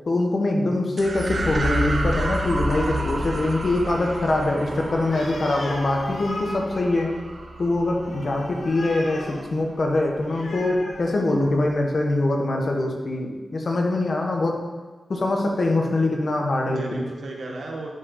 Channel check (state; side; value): normal; both; correlation 0.93